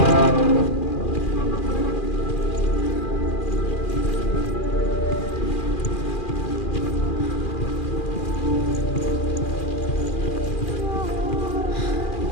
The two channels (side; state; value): right; late; 2.4 ms